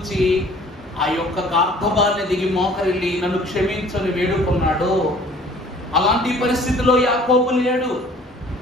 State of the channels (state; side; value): normal; both; correlation 0.53